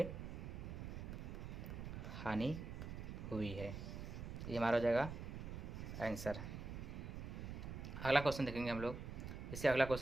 हानि हुई है। ये हमारा हो जाएगा आंसर। अगला क्वेश्चन देखेंगे हम लोग। जैसे अगला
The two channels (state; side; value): noise; right; rumble, 7 dB below the sound